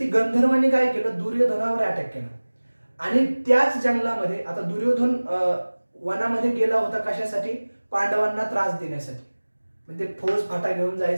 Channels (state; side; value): inverted; both; correlation -1.00